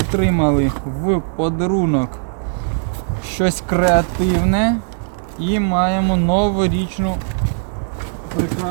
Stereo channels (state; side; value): silent; left; digital silence